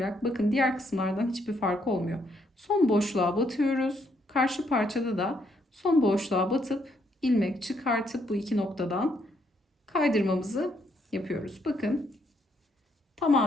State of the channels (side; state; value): both; normal; correlation 0.73